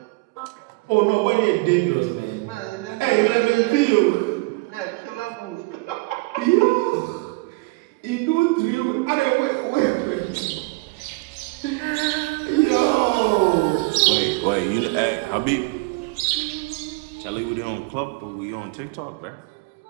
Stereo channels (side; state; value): left; quieter; 25.8 dB